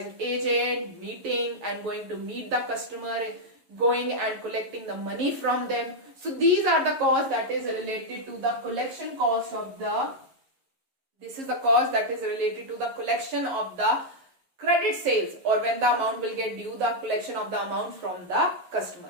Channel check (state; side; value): late; left; 11 ms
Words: agent, meeting and going to meet the customer, going and collecting the money from them. So these are the costs that is related to the collection cost of the, this is the cost that is related to the collection of the credit sales, or when the amount will get due, the collection of the amount from the